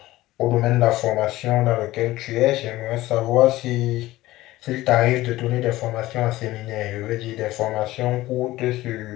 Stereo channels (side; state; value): right; quieter; 17.1 dB